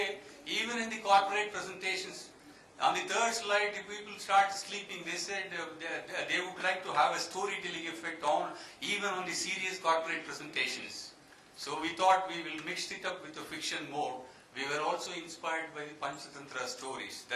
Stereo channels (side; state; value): both; identical; correlation 1.00